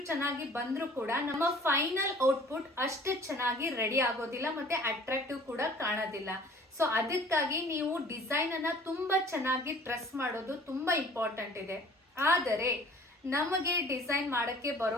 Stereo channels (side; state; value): both; normal; correlation 0.50